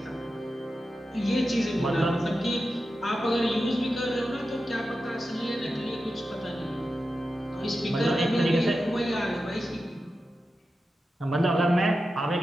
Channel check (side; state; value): both; normal; correlation 0.91